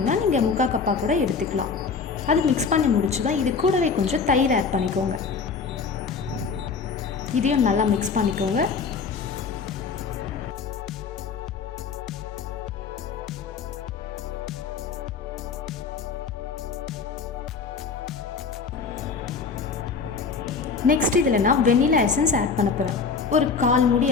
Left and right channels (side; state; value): right; quieter; 5.2 dB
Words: நீங்கள் 3/4 கப்பாக கூட எடுத்துக்கலாம். அது மிக்ஸ் பண்ணி முடிச்சுதான் இது கூடவே கொஞ்சம் தயிர் ஆட் பண்ணிக்கோங்க. இதையும் நல்லா மிக்ஸ் பண்ணிக்கோங்க. நெக்ஸ்ட் இதில் நான் வெனிலா எசன்ஸ் ஆட் பண்ண போகிறேன். ஒரு 1/4 மூடி